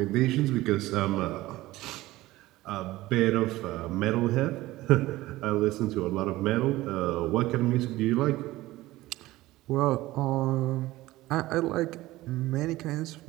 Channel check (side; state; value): left; quieter; 17.6 dB